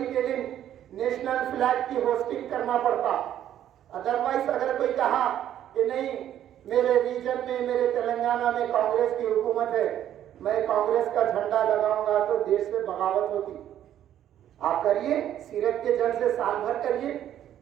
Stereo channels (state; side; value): quieter; left; 11.1 dB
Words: کے دن نیشنل فلیگ کی ہوسٹنگ کرنا پڑتا، ادروائز اگر کوئی کہا کہ نہیں میرے ریجن میں، میرے تلنگانہ میں کانگریس کی حکومت ہے، میں کانگریس کا جھنڈا لگاؤں گا تو دیش سے بغاوت ہوتی۔ آپ کریے سیرت کے جلسے سال بھر کریے،